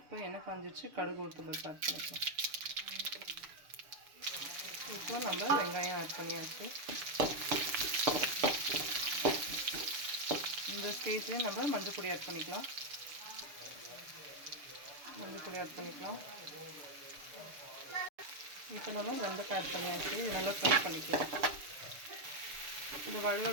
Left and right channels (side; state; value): left; late; 6.8 ms